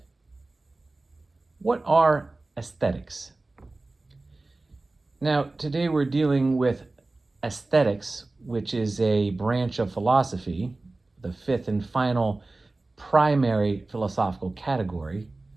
What are aesthetics? Now, today we're dealing with aesthetics, which is a branch of philosophy, the fifth and final primary philosophical category,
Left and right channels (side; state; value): left; quieter; 3.1 dB